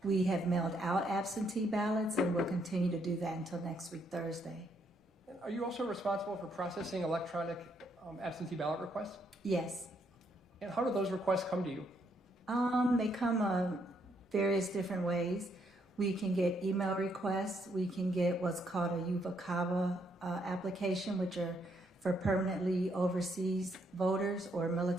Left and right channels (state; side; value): normal; both; correlation 0.73